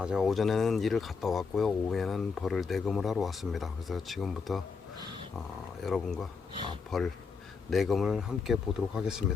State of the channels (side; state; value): right; quieter; 5.2 dB